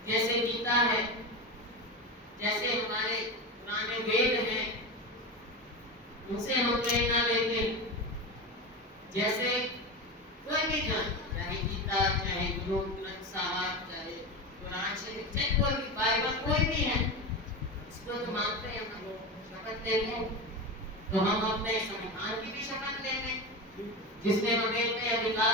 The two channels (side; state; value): both; normal; correlation 0.22